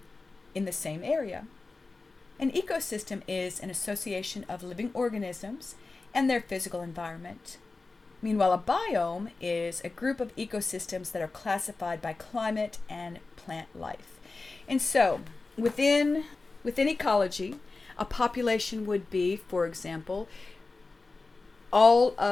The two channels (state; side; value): quieter; right; 3.7 dB